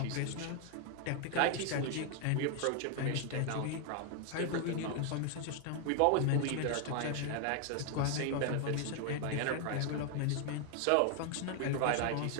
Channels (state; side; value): different; both; correlation 0.00